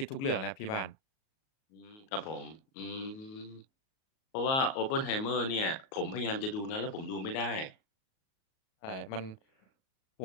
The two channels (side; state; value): right; late; 38 ms